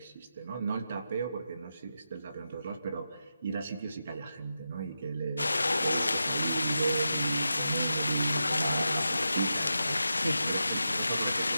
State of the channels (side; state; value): both; inverted; correlation -0.89